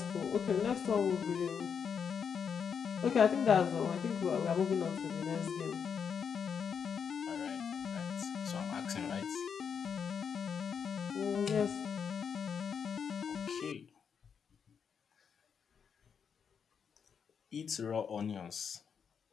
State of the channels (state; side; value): quieter; right; 6.9 dB